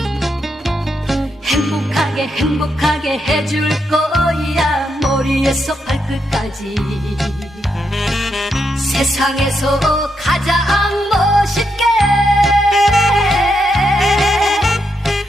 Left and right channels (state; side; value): normal; both; correlation 0.81